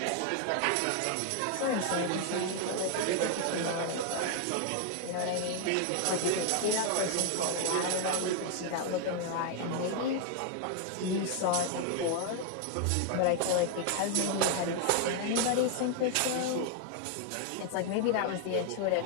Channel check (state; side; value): different; both; correlation 0.00